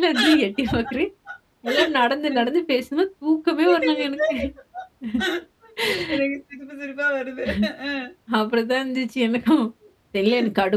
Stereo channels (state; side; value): identical; both; correlation 1.00